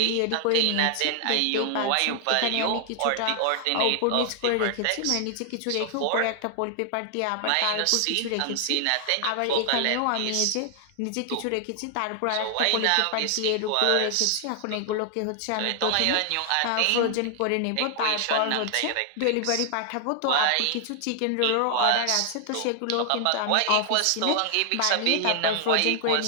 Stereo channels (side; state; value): both; different; correlation 0.00